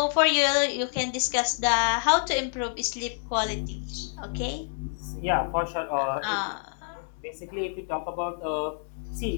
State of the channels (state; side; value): silent; right; 60 dB below the other